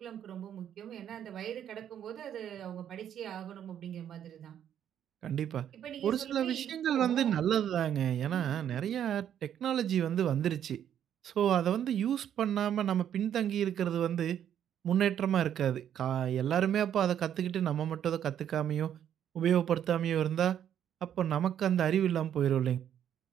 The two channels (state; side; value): quieter; left; 9.8 dB